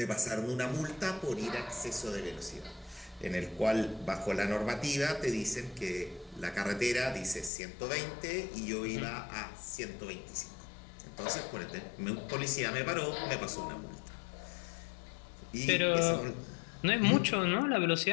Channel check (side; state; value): right; drops out; at 7.5 s